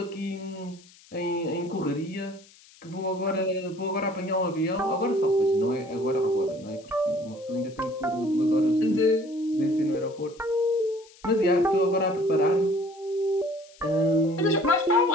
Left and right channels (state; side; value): noise; left; hiss, 25 dB below the sound